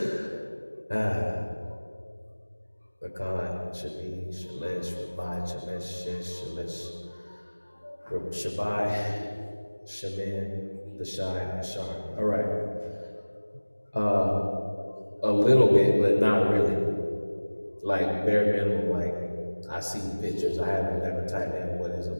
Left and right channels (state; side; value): inverted; both; correlation -1.00